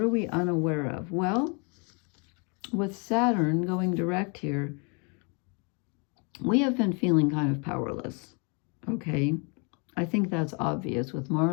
are we unaware of? Well, with Saturn going direct here, we have been feeling kind of powerless, okay? I think that's obvious with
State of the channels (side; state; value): right; quieter; 34.3 dB